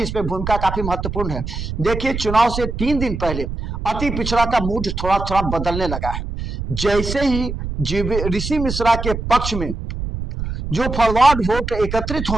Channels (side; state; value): right; noise; rumble, 5 dB below the sound